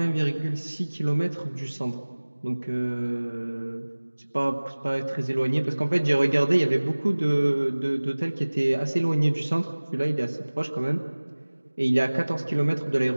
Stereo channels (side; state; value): both; inverted; correlation -1.00